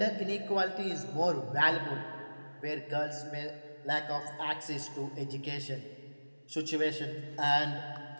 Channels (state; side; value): inverted; both; correlation -1.00